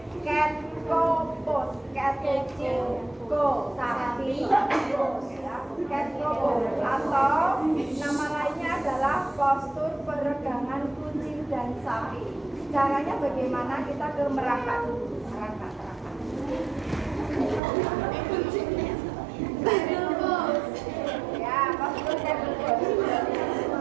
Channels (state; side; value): drops out; left; at 17.6 s